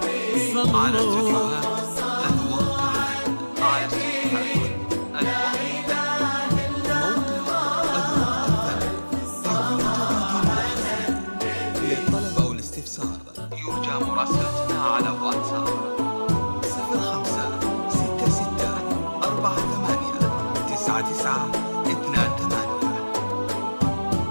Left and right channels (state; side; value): inverted; both; correlation -1.00